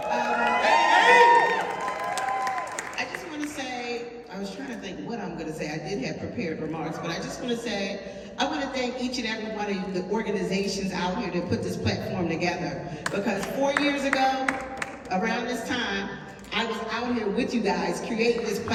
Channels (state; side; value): identical; both; correlation 1.00